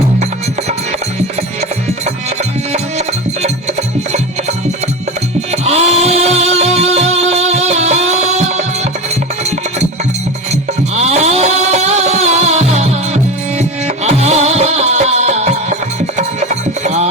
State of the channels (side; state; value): both; normal; correlation 0.25